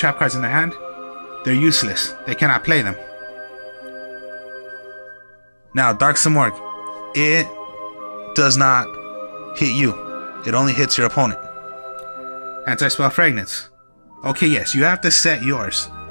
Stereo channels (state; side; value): inverted; both; correlation -1.00